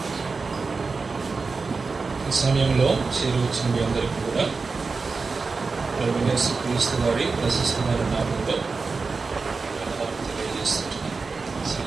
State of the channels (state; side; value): quieter; left; 4.4 dB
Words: ఈ సమయంలో చేరువచ్చిన మీ అందరికీ కూడా ప్రభు యేసు క్రీస్తు వారి ప్రశస్తమైన నామంలో తెలియజేస్తున్నాను.